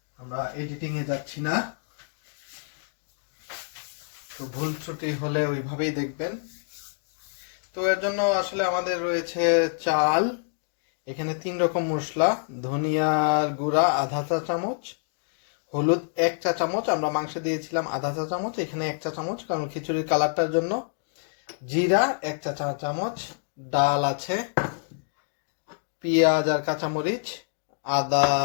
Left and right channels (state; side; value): silent; right; digital silence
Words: আমরা এডিটিংয়ে যাচ্ছি না। তো ভুল ত্রুটি হলে ওইভাবেই দেখবেন। তো এর জন্য আসলে আমাদের রয়েছে চাল, এখানে 3 রকম মশলা, ধনিয়ার গুঁড়া আধা চা চামচ, হলুদ 1 চা চামচ, আমরা মাংসে দিয়েছিলাম আধা চা চামচ, এখানে 1 চা চামচ কারণ খিচুড়ির কালারটার জন্য, জিরা 1 চা চামচ, ডাল আছে, পেঁয়াজ আর কাঁচামরিচ, আদা